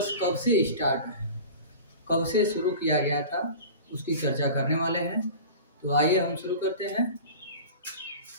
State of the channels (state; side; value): inverted; both; correlation -0.36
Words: कब से स्टार्ट है, कब से शुरू किया गया था, उसकी चर्चा करने वाले हैं। तो आइए हम शुरू करते हैं।